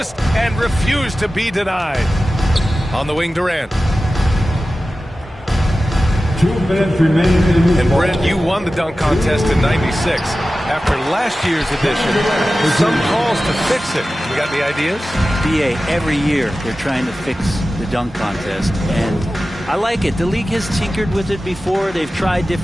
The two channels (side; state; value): both; normal; correlation 0.95